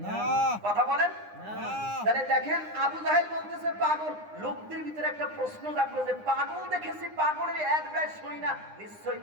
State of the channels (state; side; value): late; left; 9.8 ms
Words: না। কথা বলেন না। তাহলে দেখেন আবু জাহেল বলতেছে পাগল, লোকদের ভিতরে একটা প্রশ্ন জাগলো যে পাগল দেখেছি, পাগলের অ্যাডভাইস শুনি না, নিশ্চয়ই